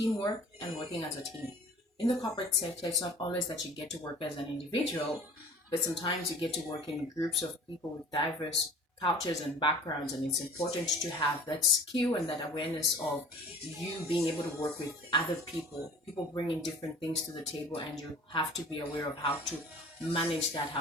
and working as a team. In the corporate sector, it's not always that you get to work as an individual, but sometimes you get to work in groups of people with diverse cultures and backgrounds, and it's important to have that skill and that awareness of you being able to work with other people bringing different things to the table, and you have to be aware of how to manage that,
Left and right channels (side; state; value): both; normal; correlation 0.46